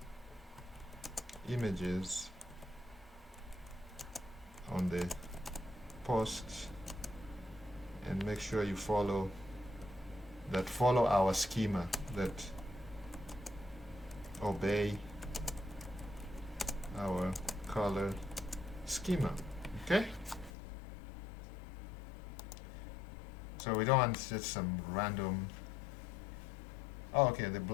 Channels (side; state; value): right; drops out; at 20.5 s